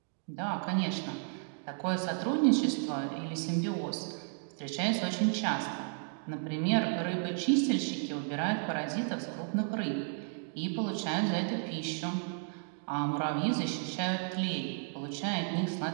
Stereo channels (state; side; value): silent; left; 56 dB below the other